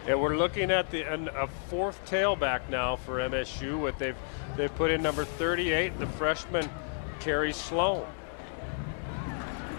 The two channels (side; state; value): right; silent; digital silence